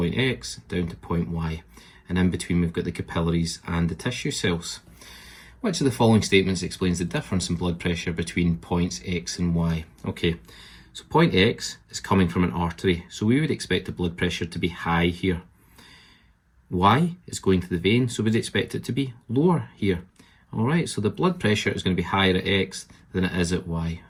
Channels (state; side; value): identical; both; correlation 1.00